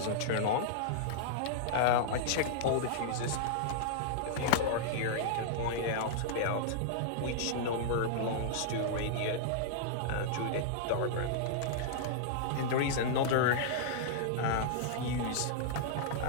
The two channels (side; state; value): both; different; correlation -0.02